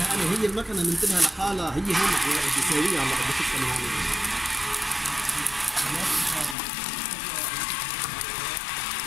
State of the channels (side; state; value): right; drops out; at 6.6 s